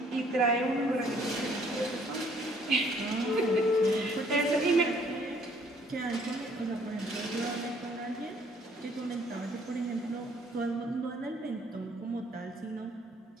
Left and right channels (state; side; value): normal; both; correlation 0.62